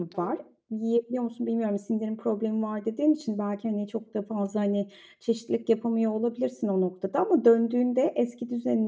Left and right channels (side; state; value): both; identical; correlation 1.00